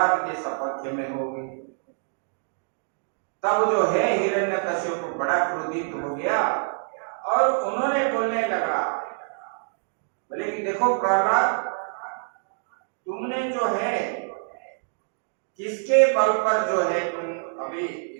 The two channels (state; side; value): silent; left; digital silence